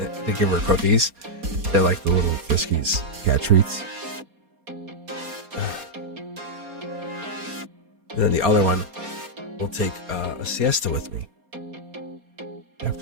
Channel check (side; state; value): left; late; 4.2 ms